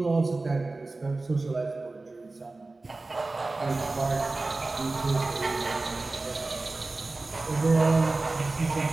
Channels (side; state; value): left; quieter; 3.3 dB